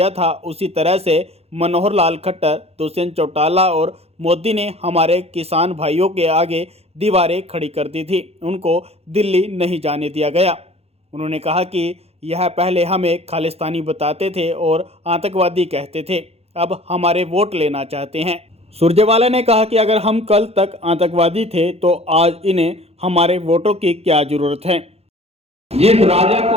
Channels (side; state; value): left; late; 0.29 ms